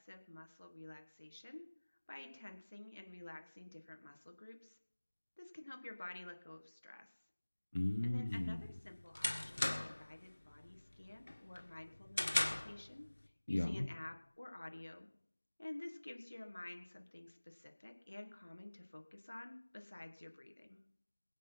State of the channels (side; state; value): both; inverted; correlation -1.00